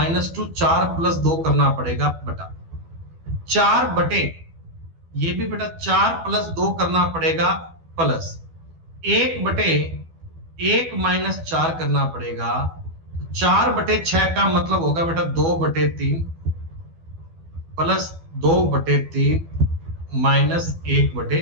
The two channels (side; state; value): left; late; 12 ms